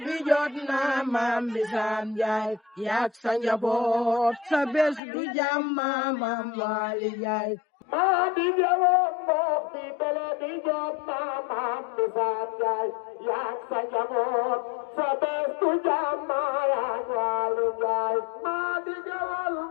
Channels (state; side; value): drops out; right; at 5.0 s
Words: bi jot na maam Bisaan Njaay yak sa njaboot sa bés du jàmma maam Waali Njaay maa dige woon ngoox mi dele bi jot na maam Bisaan Njaay yak sa njaboot sa bés du jàmma yak Waali Njaay maa dige woon